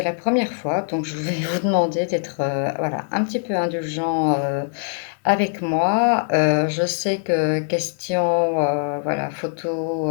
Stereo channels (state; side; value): silent; right; digital silence